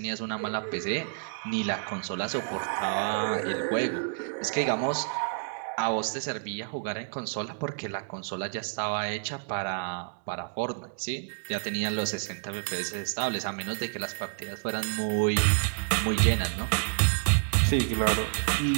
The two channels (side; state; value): left; silent; digital silence